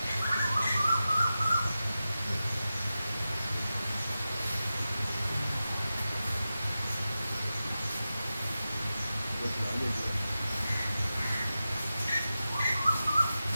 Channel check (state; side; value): inverted; both; correlation -0.93